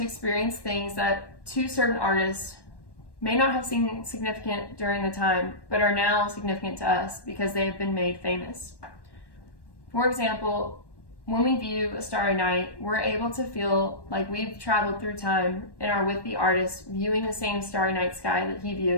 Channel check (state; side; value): late; right; 1.1 ms